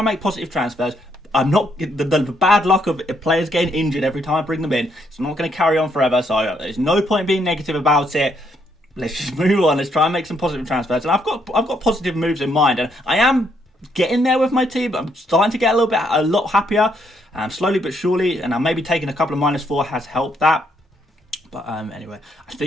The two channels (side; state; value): both; normal; correlation 0.73